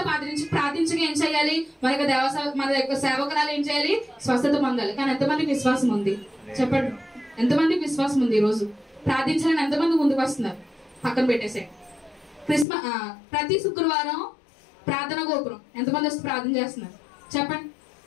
ప్రార్థించక ఏం చేయాలి? మన యొక్క సేవకురాలు ఏం చేయాలి? స్వస్థత పొందాలి. కానీ ఎంతమందికి విశ్వాసం ఉంది? చెప్పండి, ఎంతమందికి విశ్వాసం ఉంది? ఈ రోజు ప్రార్థించాలని ఎంతమంది ముందుకు వస్తున్నారు? పక్కన పెట్టేసే. ప్రతి శుక్రవారం ప్రార్థన గోపురం ఎంతమంది వచ్చి ప్రార్థన చేస్తున్నారు? చెప్పండి,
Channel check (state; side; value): drops out; right; at 12.7 s